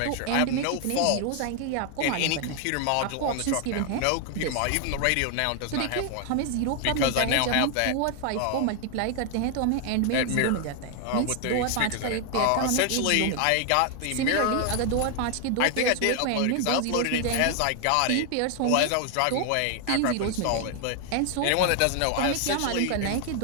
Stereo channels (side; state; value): both; different; correlation 0.00